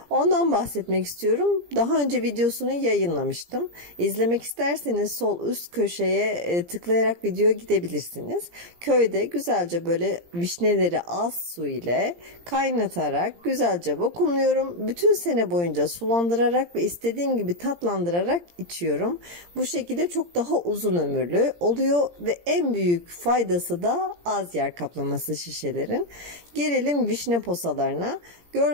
Ondan bahsetmek istiyorum. Daha önce videosunu yayınlamıştım. İzlemek isterseniz sol üst köşeye tıklayarak videoya gidebilirsiniz. Köyde güzelce böyle vişneleri az su ile kaynatarak güzelce vakumluyorum. Bütün sene boyunca sulandırarak ve istediğim gibi tatlandırarak içiyorum. Bu şekilde çok daha uzun ömürlü oluyor ve en büyük faydası da az yer kaplaması şişelerin. Gelelim vişne posalarına.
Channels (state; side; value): late; left; 17 ms